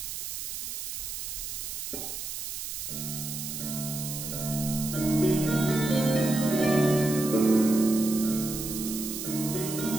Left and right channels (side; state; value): right; noise; hiss, 6 dB below the sound